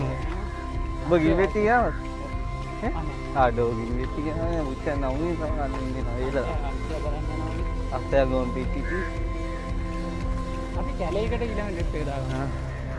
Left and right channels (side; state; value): both; identical; correlation 1.00